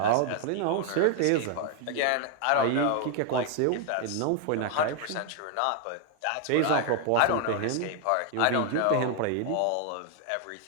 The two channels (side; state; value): both; different; correlation 0.00